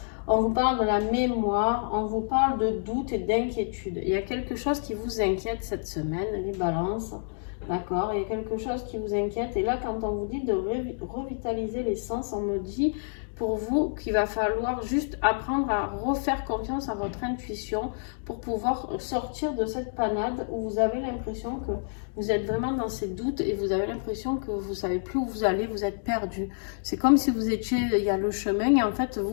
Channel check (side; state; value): right; silent; digital silence